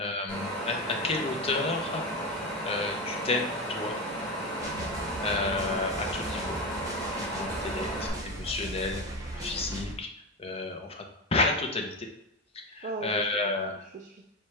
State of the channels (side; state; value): both; normal; correlation 0.18